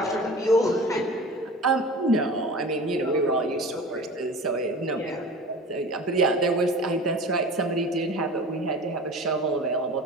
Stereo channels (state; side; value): normal; both; correlation 0.37